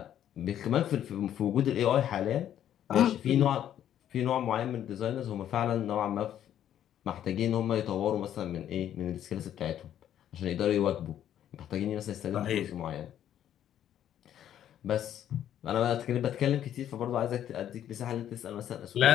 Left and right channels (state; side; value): quieter; right; 10.8 dB